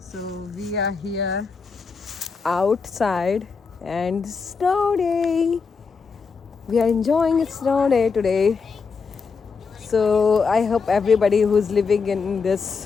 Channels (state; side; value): quieter; right; 5.2 dB